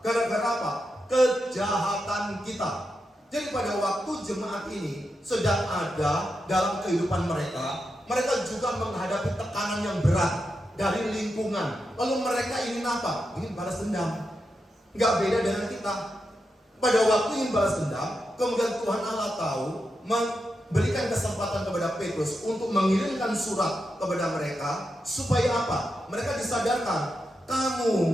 Gara-gara apa? Kejahatan kita. Jadi pada waktu jemaat ini sedang ada dalam kehidupan mereka, mereka juga menghadapi tekanan yang berat dari lingkungan. Lalu mereka ingin apa? Ingin balas dendam. Nggak beda dengan kita. Pada waktu ingin balas dendam, kemudian Tuhan Allah tahu, memberikan kesempatan kepada Petrus untuk mengirimkan surat kepada mereka. Supaya apa? Mereka disadarkan, kamu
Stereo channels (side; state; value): both; normal; correlation 0.87